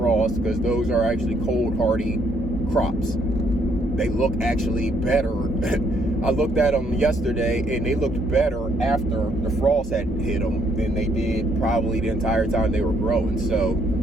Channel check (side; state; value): both; normal; correlation 0.70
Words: because those are actually cold hardy crops. They look actually better. I looked at them yesterday, and they looked better after the frost had hit them than they did probably the entire time they were growing. So